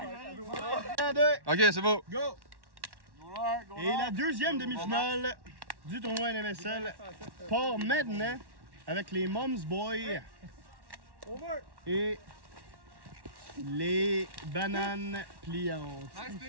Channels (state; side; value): late; left; 1.1 ms